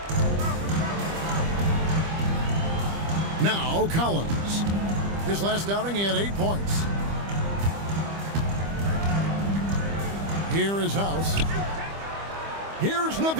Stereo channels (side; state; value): left; late; 25 ms